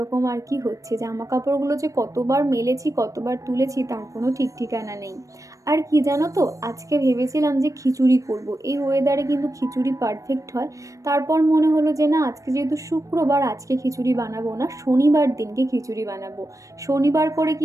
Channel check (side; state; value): left; late; 0.16 ms